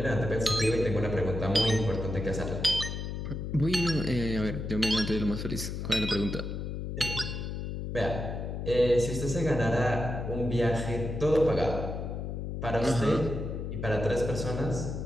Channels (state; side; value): noise; left; hum, 5 dB below the sound